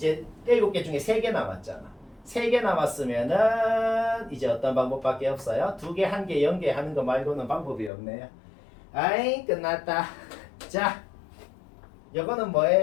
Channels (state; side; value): drops out; right; at 7.9 s